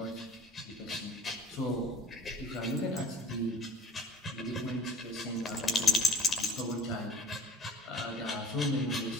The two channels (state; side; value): normal; both; correlation 0.43